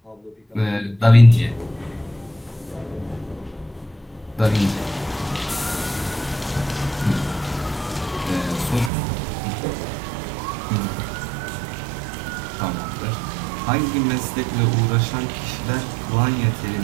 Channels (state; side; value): drops out; left; at 8.9 s